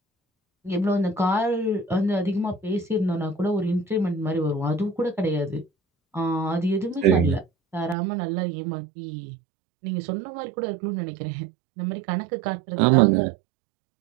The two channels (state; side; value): drops out; left; at 8.0 s